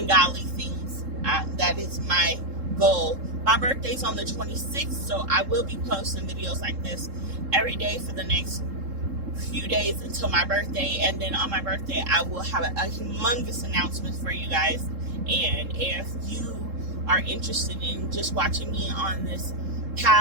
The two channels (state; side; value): late; left; 3.7 ms